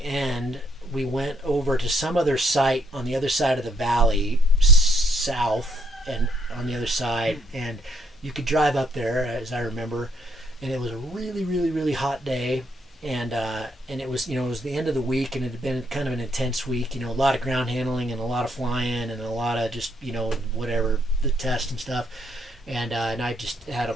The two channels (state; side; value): normal; both; correlation 0.69